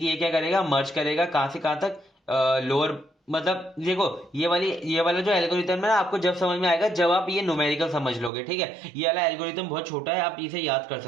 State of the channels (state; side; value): drops out; left; at 8.3 s